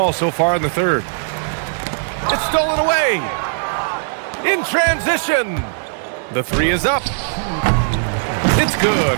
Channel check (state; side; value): silent; left; digital silence